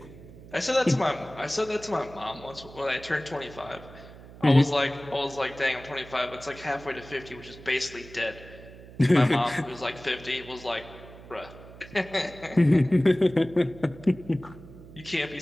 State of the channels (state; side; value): noise; right; hum, 18 dB below the sound